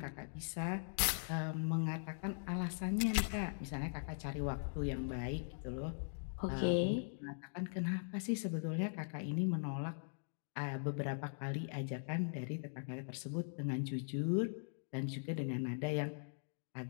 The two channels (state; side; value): silent; right; digital silence